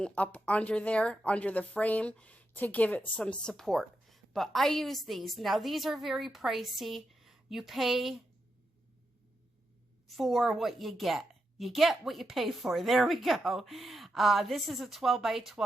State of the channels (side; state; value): both; normal; correlation 0.85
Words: up under there, under the frame, to give it some support. But I use these. Now, these are very pricey. You pay for what you get. You get what you pay for. There we go. This is a 12 by